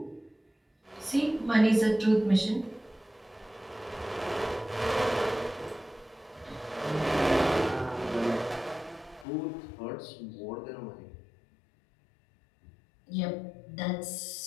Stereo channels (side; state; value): right; drops out; at 9.2 s